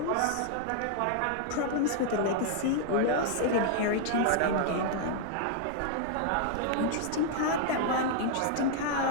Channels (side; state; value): both; different; correlation 0.00